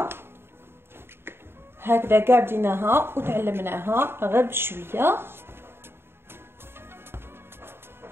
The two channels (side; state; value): left; late; 0.11 ms